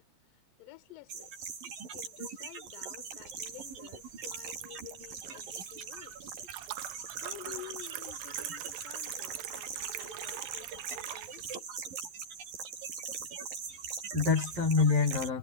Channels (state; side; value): late; left; 11 ms